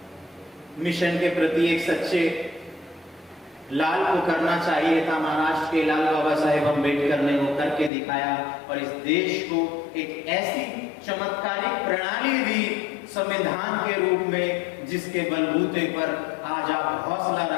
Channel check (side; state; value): right; drops out; at 7.9 s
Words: मिशन के प्रति एक सच्चे लाल को करना चाहिए था, महाराष्ट्र के लाल बाबा साहेब अंबेडकर ने वो करके दिखाया और इस देश को एक ऐसी चमत्कारिक प्रणाली दी संविधान के रूप में, जिसके बलबूते पर आज आप हौसला